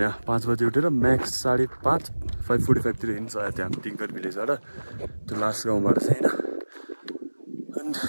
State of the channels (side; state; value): both; inverted; correlation -1.00